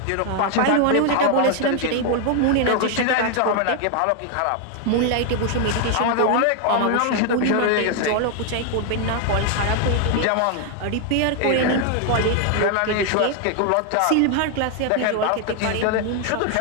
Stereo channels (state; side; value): different; both; correlation 0.01